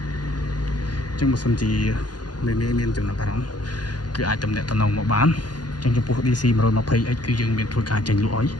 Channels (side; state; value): right; late; 0.69 ms